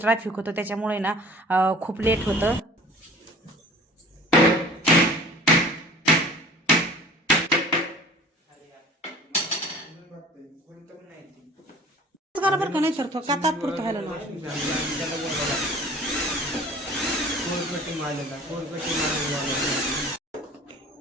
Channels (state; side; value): normal; both; correlation 0.46